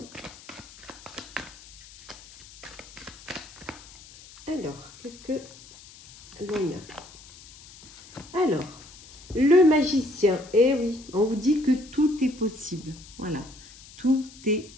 Alors, qu'est-ce que l'on a? Alors, le magicien. Eh oui, on vous dit que tout est possible. Voilà, tout est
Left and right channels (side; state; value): left; noise; hiss, 20 dB below the sound